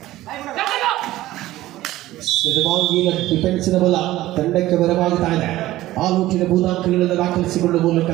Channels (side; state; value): left; quieter; 15.9 dB